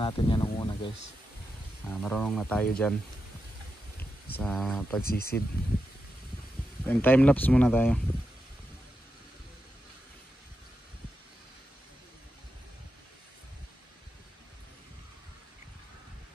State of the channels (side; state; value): both; normal; correlation 0.88